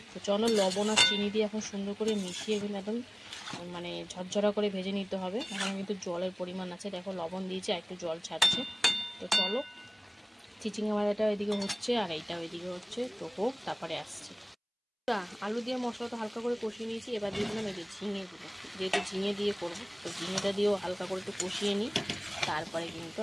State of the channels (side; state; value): both; identical; correlation 1.00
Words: তো চলো লবণ আর চিনি দিয়ে এখন সুন্দর করে মিশিয়ে কিন্তু একদম মানে ঝরঝরা করে ভেজে নিতে হবে। এখন কিন্তু জলের পরিমাণ আছে, দেখো লবণ দিয়েছে আর একটু জল ছাড়ছে। তো চলো চিচিঙ্গা ভাজাটা ওইদিকে হচ্ছে আর এইটা ওইদিকে হচ্ছে, তো হোক তারপরে আসছে। আলু দিয়ে মশলাটা হালকা করে কষিয়ে নিয়েছি, এবার দিয়ে দিলাম এই যে ঝিঙেগুলো, যেহেতু ঝিঙে দিয়ে করবো তো ঝিঙেটা দিয়েও হালকা করে একটু কষিয়ে নিই। তারপরে কিন্তু